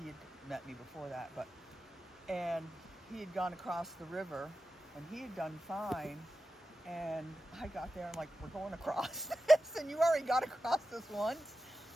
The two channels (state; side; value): normal; both; correlation 0.92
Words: had met me before that, and he had gone across the river, and he had done fine. And I got there, I'm like, we're going across this, and you already got across this once.